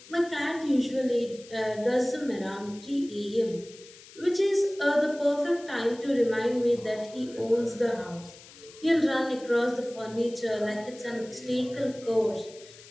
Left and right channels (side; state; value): left; noise; hiss, 20 dB below the sound